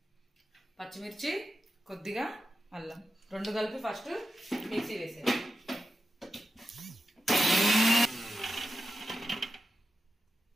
పచ్చిమిర్చి కొద్దిగా అల్లం రెండు కలిపి ఫస్ట్ మిక్సీ వేసేది.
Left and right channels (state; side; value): normal; both; correlation 0.90